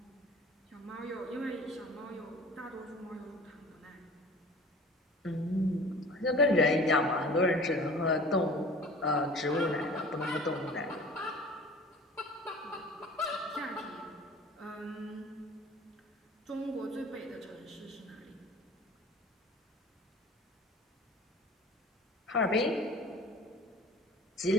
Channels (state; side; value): normal; both; correlation 0.43